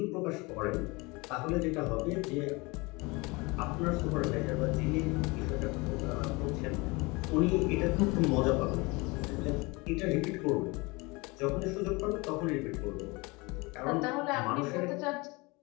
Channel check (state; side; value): quieter; right; 25.6 dB